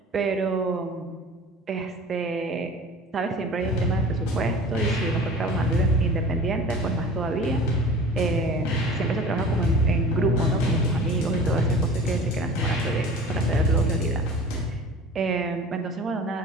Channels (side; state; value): both; normal; correlation 0.41